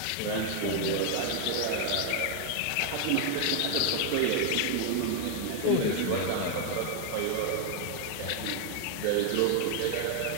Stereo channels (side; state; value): both; different; correlation 0.00